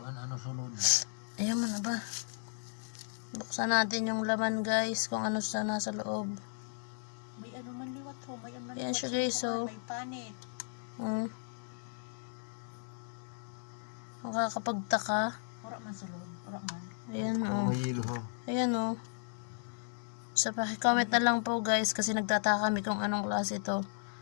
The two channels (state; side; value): silent; right; digital silence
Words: ano sunod? Ayan man ba? Buksan natin yung laman guys, kung ano sa nasa loob. May man liwat ho, may man Ayan liwat siya guys, may panit. Makakapagtaka. Ora man sa loob, ora man. Ayan May hilo ho. Ayan So paki-comment na lang po guys kasi nagtataka kami kung anong klase ito.